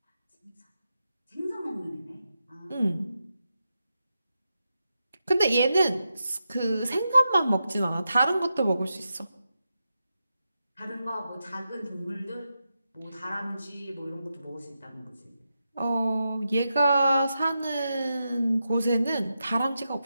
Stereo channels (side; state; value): both; inverted; correlation -0.88